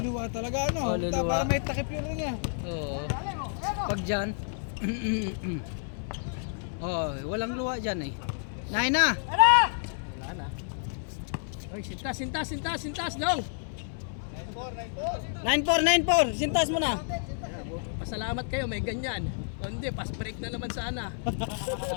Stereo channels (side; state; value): right; silent; 58 dB below the other